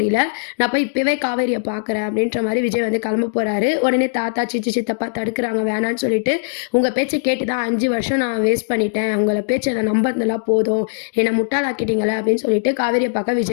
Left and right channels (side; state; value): right; silent; digital silence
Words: நான் போய் இப்பவே காவேரிய பார்க்குறேன் அப்படின்ற மாரி விஜய் வந்து கிளம்ப போறாரு. உடனே தாத்தா, சித்தப்பா தடுக்குறாங்க வேணான்னு சொல்லிட்டு, உங்க பேச்ச கேட்டு தான் 5 வருஷம் நான் வேஸ்ட் பண்ணிட்டேன். உங்கள பேச்ச நான் நம்புனதெல்லாம் போதும். என்ன முட்டாளாக்கிட்டீங்களே அப்படின்னு சொல்லிட்டு காவேரிய பார்க்க